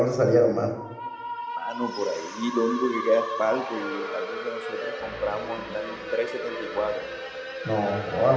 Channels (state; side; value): identical; both; correlation 1.00